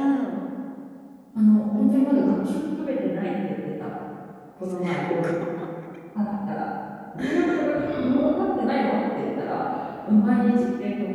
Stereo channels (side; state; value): both; identical; correlation 1.00